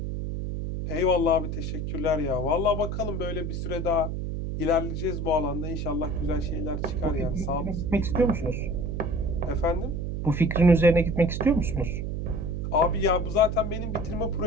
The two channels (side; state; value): right; noise; hum, 3 dB below the sound